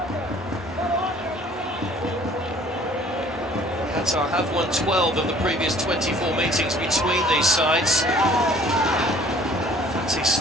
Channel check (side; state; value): both; normal; correlation 0.54